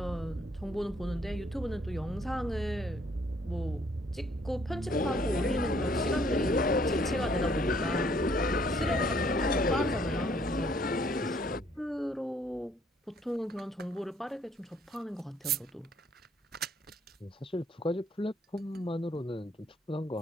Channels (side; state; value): both; normal; correlation 0.64